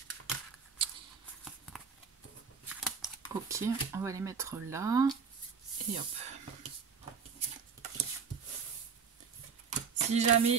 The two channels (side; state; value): left; quieter; 6.0 dB